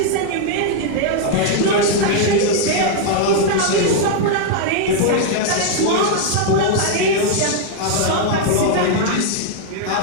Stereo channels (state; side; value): different; both; correlation 0.00